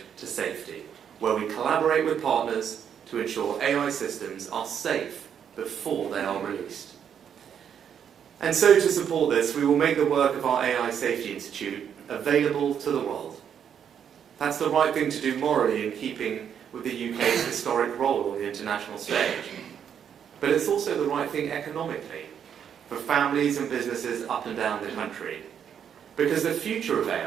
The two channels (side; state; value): left; quieter; 8.3 dB